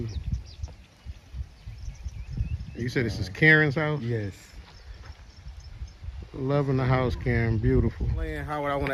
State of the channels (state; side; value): identical; both; correlation 1.00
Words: You said this is Karen's house? Yes. Loving the house, Karen. Beautiful. Howard, I want